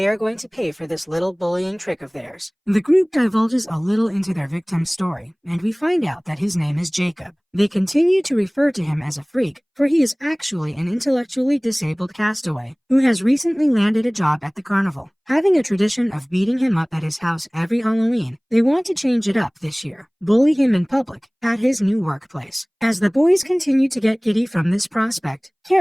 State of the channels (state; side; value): identical; both; correlation 1.00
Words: are going to pay for this little bullying trick of theirs. The group divulges a little into their victim's story, and we find out that his name is Jacob. They continue to refer to him as a freak, for he is actually an intellectually disabled castaway who has recently landed a job at the carnival. Having a tradition of beating him up at his house every Halloween, they want to change it up this year, bully him in public at his new workplace. As the boys continue to get giddy from this prospect,